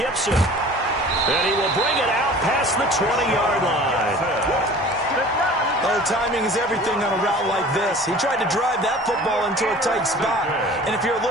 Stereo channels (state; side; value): normal; both; correlation 0.44